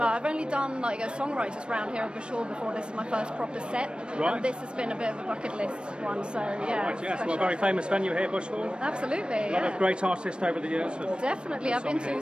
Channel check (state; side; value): late; left; 0.055 ms